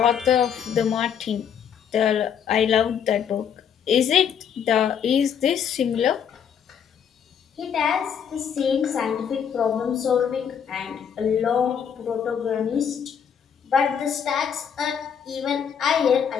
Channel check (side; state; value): right; quieter; 7.8 dB